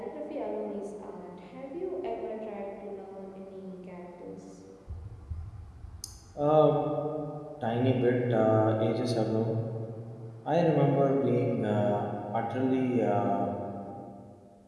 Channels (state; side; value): identical; both; correlation 1.00